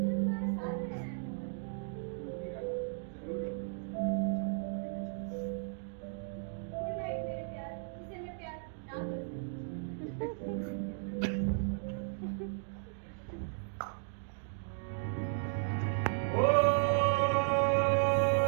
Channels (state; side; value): silent; left; digital silence